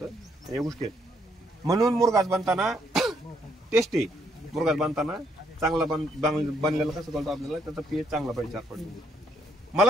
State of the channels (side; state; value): both; normal; correlation 0.72